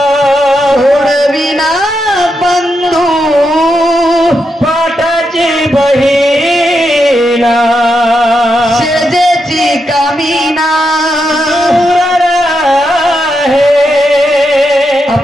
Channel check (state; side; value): normal; both; correlation 0.84